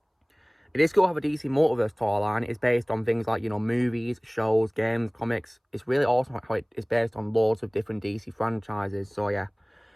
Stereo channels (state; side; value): identical; both; correlation 1.00